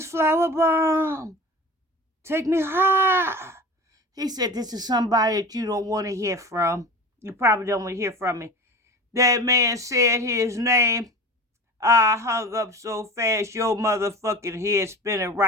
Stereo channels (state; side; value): normal; both; correlation 0.35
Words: Flower Bomb. Take me high. He said, this is somebody that you don't want to hear from. You probably don't want to hear from me. That man said his name. I hung up so fast, your motherfucking head spinning